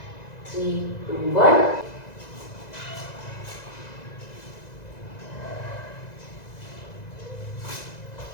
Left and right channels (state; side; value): late; right; 2.0 ms